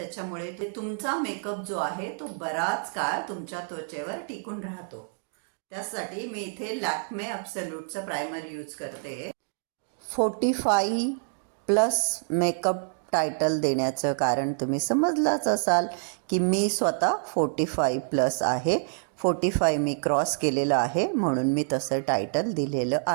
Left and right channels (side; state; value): left; silent; 60 dB below the other